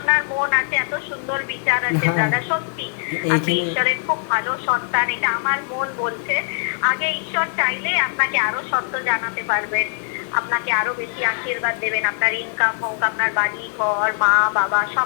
মন আছে, এত সুন্দর বিচার আছে হ্যাঁ। দাদা, সত্যি আপনি এইখানে ঈশ্বরের খুব ভালো সন্তান, এটা আমার মন বলছে। আগে ঈশ্বর চাইলে আপনাকে আরো সত্য জানাতে পারবেন, আপনাকে আরো বেশি আশীর্বাদ দেবেন, আপনার ইনকাম হোক, আপনার বাড়ি ঘর, মা বাবা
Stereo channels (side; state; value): right; silent; digital silence